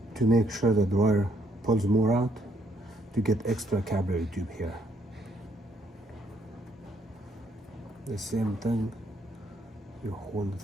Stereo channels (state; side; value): normal; both; correlation 0.70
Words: to make sure the wire pulls more out, to get extra capillary tube here. The same thing, you hold it